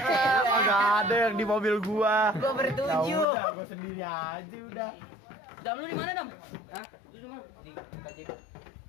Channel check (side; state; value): right; drops out; at 3.2 s